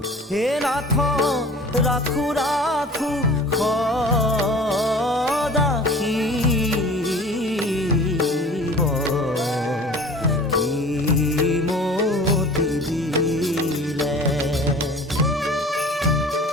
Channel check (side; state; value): both; normal; correlation 0.44